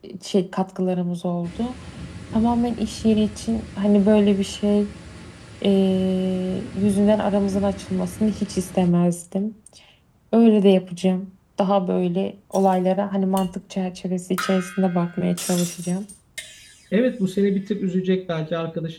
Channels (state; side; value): identical; both; correlation 1.00